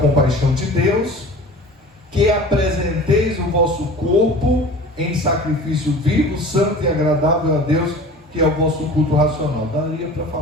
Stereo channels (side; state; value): both; normal; correlation 0.40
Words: de Deus, que apresenteis o vosso corpo em sacrifício vivo, santo e agradável a Deus, que é o vosso culto racional. Daria para